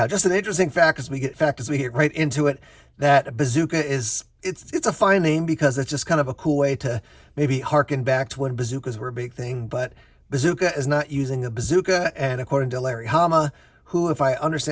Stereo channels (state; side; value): identical; both; correlation 1.00